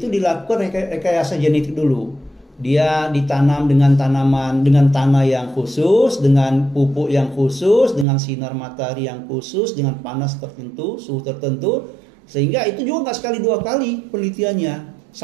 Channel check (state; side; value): drops out; left; at 8.1 s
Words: dilakukan rekayasa genetik dulu. Dia ditanam dengan tanaman, dengan tanah yang khusus, dengan pupuk yang khusus, dengan sinar matahari yang khusus, dengan panas tertentu, suhu tertentu, sehingga itu juga nggak sekali dua kali penelitiannya,